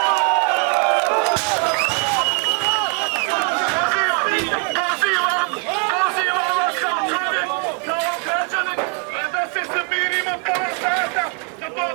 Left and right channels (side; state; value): left; quieter; 38.3 dB